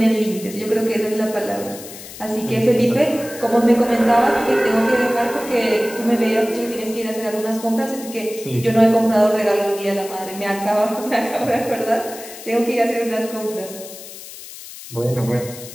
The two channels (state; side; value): noise; left; hiss, 14 dB below the sound